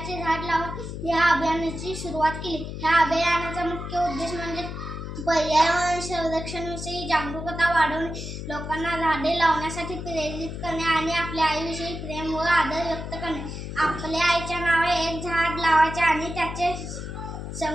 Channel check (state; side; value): noise; left; hum, 7 dB below the sound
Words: झाड लावून या अभियानाची सुरुवात केली. ह्या अभियानाचा मुख्य उद्देश म्हणजे पर्यावरण संरक्षणाविषयी जागरूकता वाढवणे, लोकांना झाडे लावण्यासाठी प्रेरित करणे आणि आपल्या आईविषयी प्रेम व आदर व्यक्त करणे. आपल्या आईच्या नावे एक झाड लावायचे आणि त्याचे